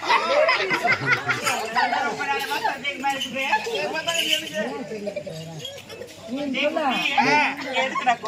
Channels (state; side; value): identical; both; correlation 1.00